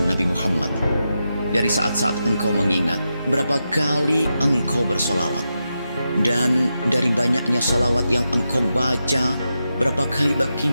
Nabi Muhammad. Dari saat-saat engkau mengingat, berapa kali engkau bersolawat. Dan dari banyaknya salawat yang engkau baca, berapa kali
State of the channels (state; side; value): inverted; both; correlation -0.88